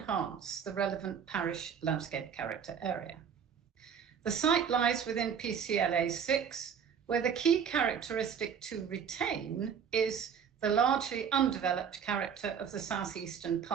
the relevant parish landscape character area. The site lies within PCLA 6, where the key characteristic to retain is the largely undeveloped character of the southeastern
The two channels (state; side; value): quieter; left; 7.5 dB